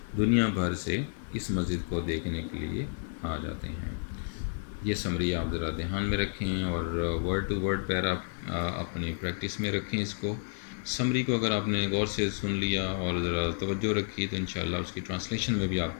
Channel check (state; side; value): silent; right; 57 dB below the other